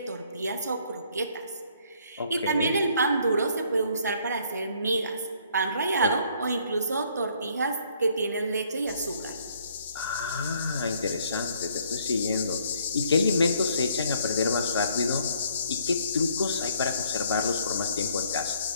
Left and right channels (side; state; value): both; inverted; correlation -0.64